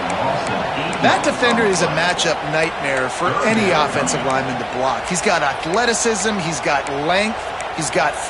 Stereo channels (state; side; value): identical; both; correlation 1.00